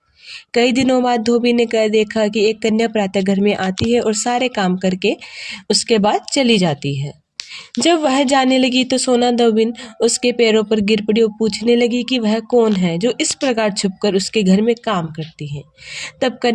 कई दिनों बाद धोबी ने कह देखा कि एक कन्या प्रातः घर में आती है और सारे काम करके उसके बाद चली जाती है। जब वह जाने लगी तो सोना धोबिन उसके पैरों पर गिर पड़ी और पूछने लगी कि वह कौन है जो इस प्रकार छुपकर उसके घर में काम करती है। तब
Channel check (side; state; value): both; identical; correlation 1.00